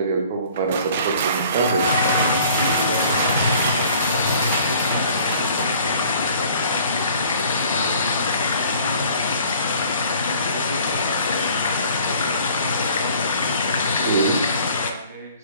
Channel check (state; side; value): inverted; both; correlation -0.53